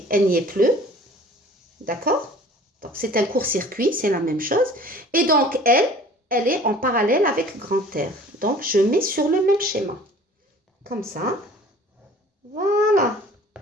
elle n'y est plus. D'accord? Donc, c'est un court-circuit, c'est la même chose. Et donc, elle est en parallèle avec grand R. Donc, je mets sur le même schéma. Comme ça. Voilà.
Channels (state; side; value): normal; both; correlation 0.48